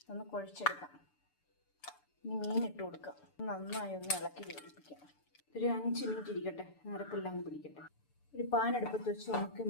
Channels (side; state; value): right; late; 6.8 ms